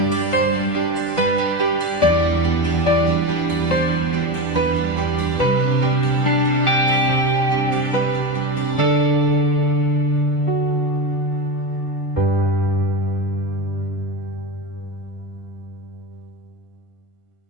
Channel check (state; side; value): late; right; 1.4 ms